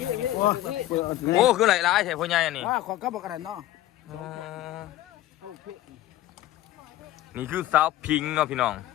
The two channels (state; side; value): quieter; right; 14.7 dB